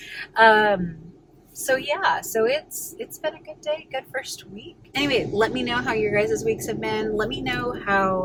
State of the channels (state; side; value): identical; both; correlation 1.00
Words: So yeah, so it's been a good day, good first week. Anyway, let me know how your guys' weeks have been. Let me know